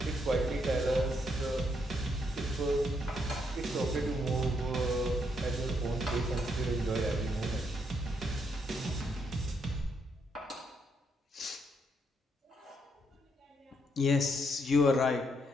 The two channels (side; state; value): both; normal; correlation 0.75